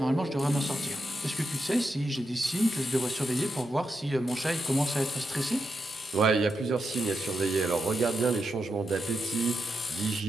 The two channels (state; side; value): normal; both; correlation 0.86